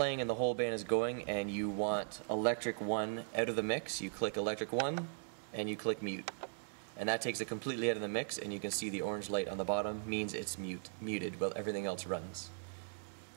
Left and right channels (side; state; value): left; silent; digital silence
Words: and the whole band is going and you want electric 1 out of the mix, you click electric 1 and you click mute. And that takes it completely out of the mix, and you can see the orange light on the bottom means it's muted while everything else runs.